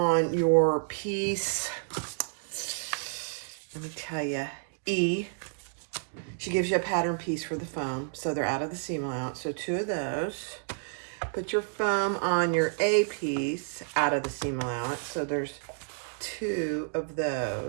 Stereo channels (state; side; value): silent; left; digital silence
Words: your piece. Let me tell you, E. She gives you a pattern piece for the foam, so they're out of the seam allowance. So 2 of those. Put your foam on your A piece out of the seam allowance. So there's 2 of